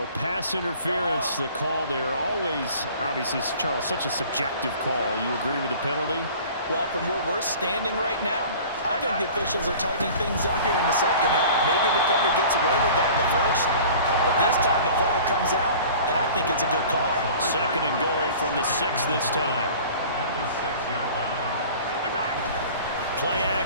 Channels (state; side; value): inverted; both; correlation -0.44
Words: pass interference, the call there. Always, obviously, Charles, such a subjective call. You agree with the penalty? Well, from where we're standing right now, I think the officials are tightening things up here in the second half. Maybe a defender gets away with that in the first, but this time the flag comes out, and I think it's a good call. 2nd and goal from the 6 this time. Play